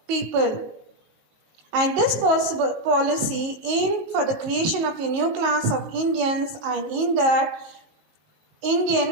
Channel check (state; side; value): late; left; 19 ms